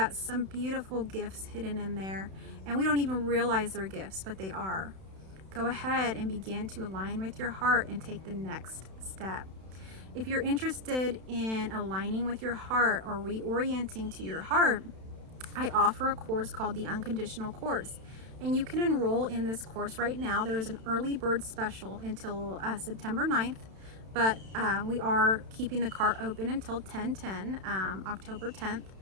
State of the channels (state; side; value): late; left; 31 ms